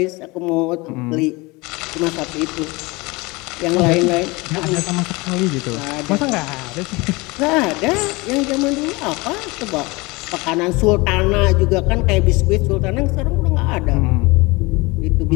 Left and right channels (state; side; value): quieter; right; 24.4 dB